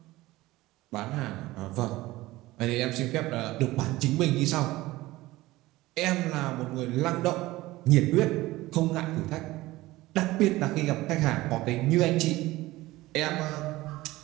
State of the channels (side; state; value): left; quieter; 18.4 dB